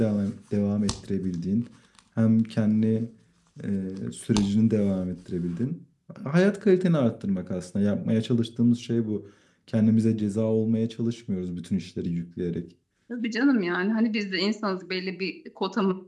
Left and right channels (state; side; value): identical; both; correlation 1.00